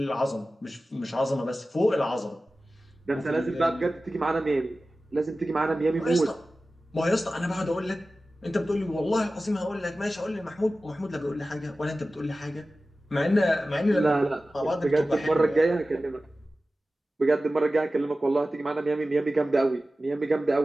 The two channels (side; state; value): both; normal; correlation 0.95